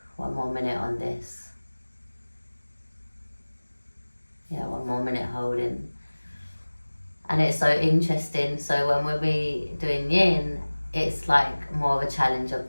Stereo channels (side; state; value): both; inverted; correlation -1.00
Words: 1 more minute on this. Yeah, 1 more minute holding. And it's so interesting. So when we'll be doing yin, it's like more of a challenge of